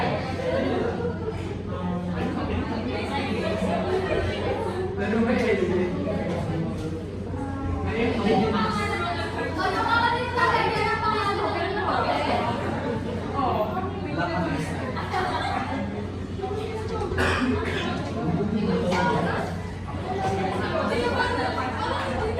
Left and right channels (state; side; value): identical; both; correlation 1.00